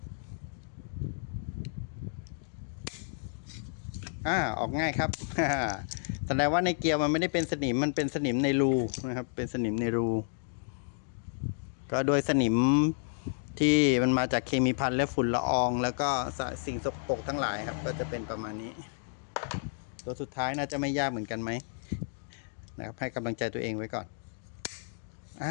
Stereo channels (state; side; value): silent; right; digital silence